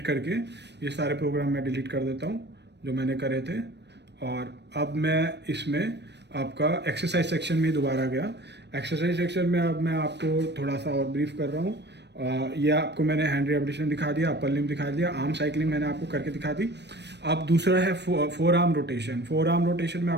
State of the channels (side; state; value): left; late; 0.50 ms